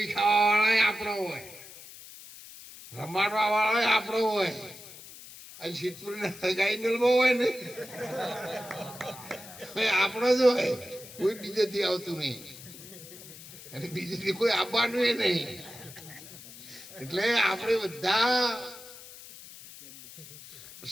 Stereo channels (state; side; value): noise; left; hiss, 16 dB below the sound